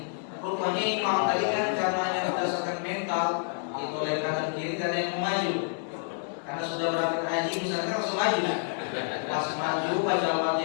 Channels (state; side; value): silent; right; 59 dB below the other